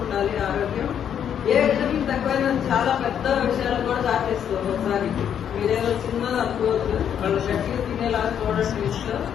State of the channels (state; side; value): quieter; right; 8.9 dB